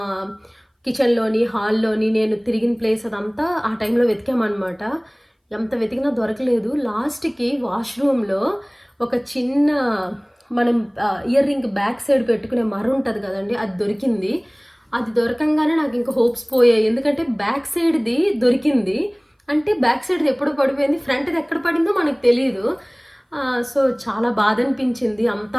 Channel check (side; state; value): both; identical; correlation 1.00